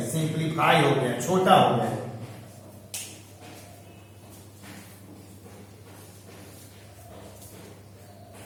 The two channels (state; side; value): identical; both; correlation 1.00